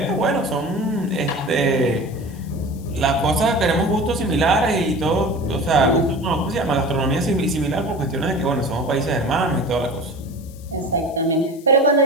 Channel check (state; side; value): noise; left; hiss, 24 dB below the sound